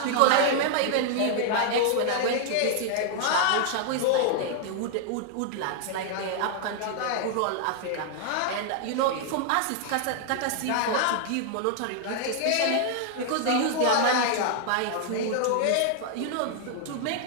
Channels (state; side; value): different; both; correlation 0.00